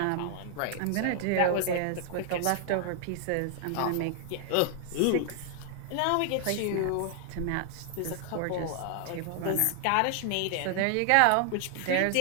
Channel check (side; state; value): both; different; correlation 0.00